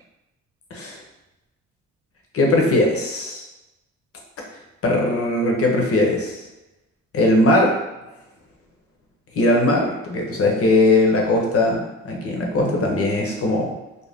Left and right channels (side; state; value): both; normal; correlation 0.35